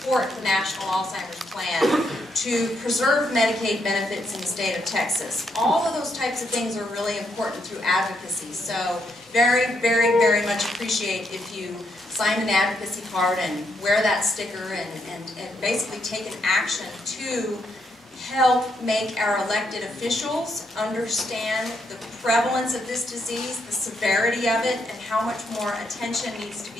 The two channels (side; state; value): both; normal; correlation 0.77